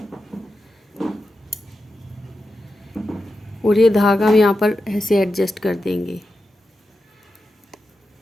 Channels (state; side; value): normal; both; correlation 0.90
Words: और ये धागा हम यहाँ पर ऐसे एडजस्ट कर देंगे।